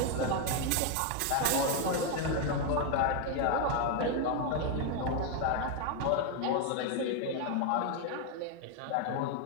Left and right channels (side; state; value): both; different; correlation 0.01